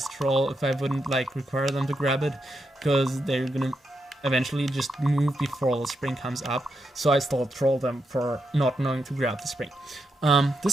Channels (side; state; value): both; normal; correlation 0.84